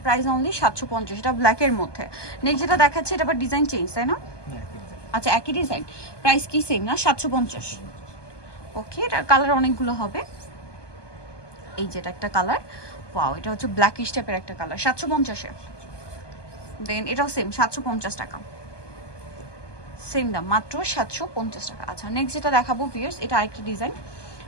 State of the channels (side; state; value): right; late; 1.2 ms